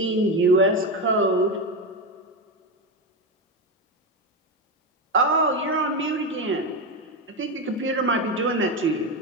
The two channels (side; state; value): both; normal; correlation 0.14